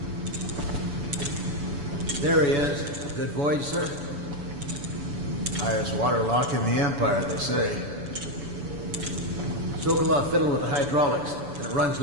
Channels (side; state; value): left; late; 7.0 ms